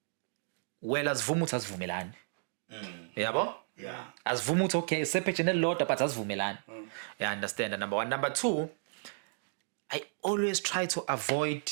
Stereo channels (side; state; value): left; silent; digital silence